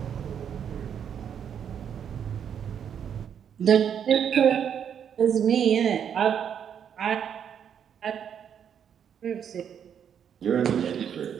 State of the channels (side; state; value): left; quieter; 8.4 dB